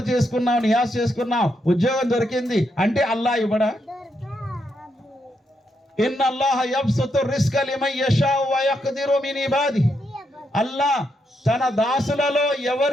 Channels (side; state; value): both; normal; correlation 0.80